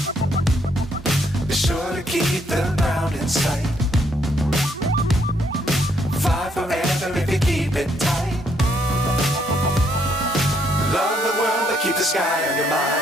Be sure to keep the ground in sight. Fly forever if you keep it tight. Love the world but keep the sky on your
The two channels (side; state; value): both; normal; correlation 0.72